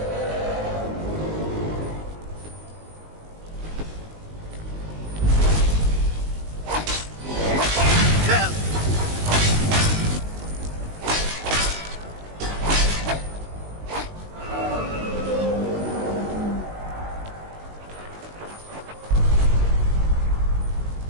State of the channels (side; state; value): left; late; 19 ms